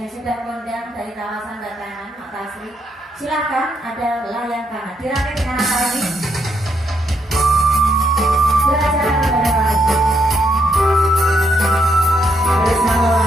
sudah kondang dari kawasan Batangan, Makasri, silakan ada layang kanan. Dirakit dengan apa lagi? Belajar kepada lagi. Bersama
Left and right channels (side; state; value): both; normal; correlation 0.76